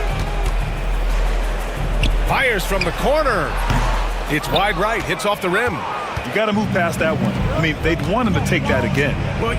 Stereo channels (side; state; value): both; identical; correlation 1.00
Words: Fires from the corner. It's wide right. Hits off the rim. You got to move past that one. I mean, they'd want him to take that again. Well,